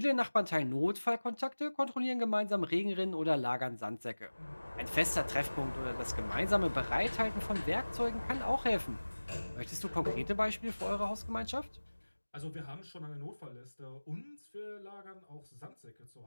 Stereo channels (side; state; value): both; inverted; correlation -1.00